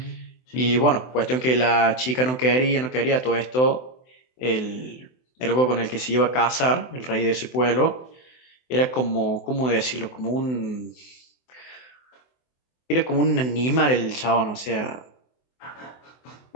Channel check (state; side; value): late; right; 24 ms